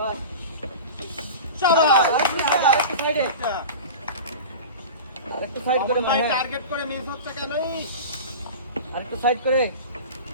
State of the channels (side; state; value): both; inverted; correlation -0.31